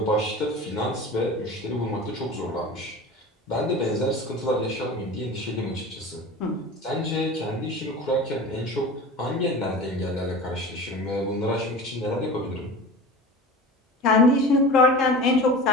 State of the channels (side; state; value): both; normal; correlation 0.34